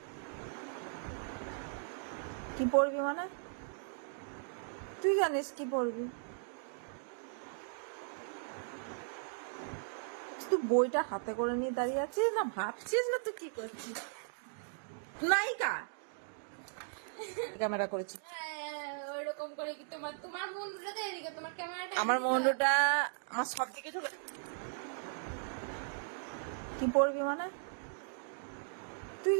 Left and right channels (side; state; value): left; silent; digital silence